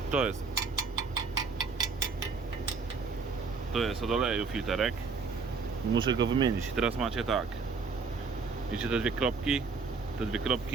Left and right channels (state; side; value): quieter; left; 4.6 dB